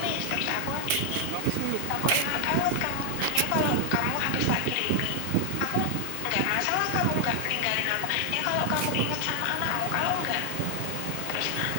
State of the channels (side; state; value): both; different; correlation 0.00